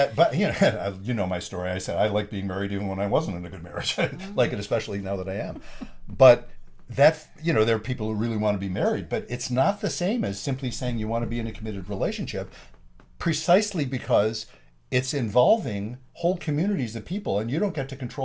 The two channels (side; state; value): both; identical; correlation 1.00